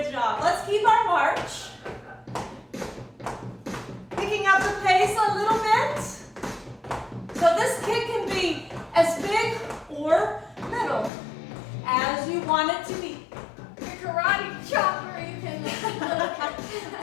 job. Let's keep our march. Picking up the pace a little bit. So this kick can be as big or little as you want it to be. Your karate chopper, you can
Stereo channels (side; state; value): right; drops out; at 11.1 s